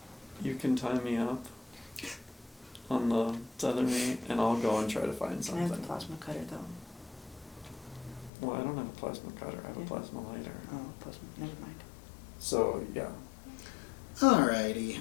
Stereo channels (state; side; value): drops out; right; at 8.3 s